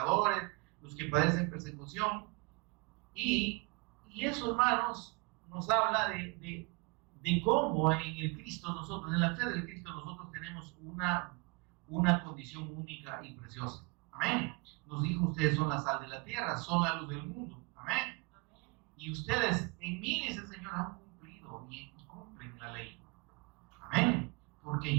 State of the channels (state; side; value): quieter; left; 30.2 dB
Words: los que padecen persecución. Y eso, hermanos, nos habla de cómo en el Cristo nosotros, en la fe del Cristo nosotros tenemos una condición única y preciosa. Amén. Nos dijo: ustedes son la sal de la tierra, son la luz del mundo. Amén. Y ustedes en mí, dice el Señor, han cumplido y cumplen la ley. Amén. Porque